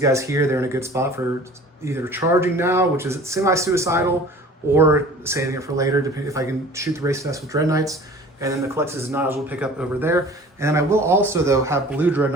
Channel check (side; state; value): both; normal; correlation 0.45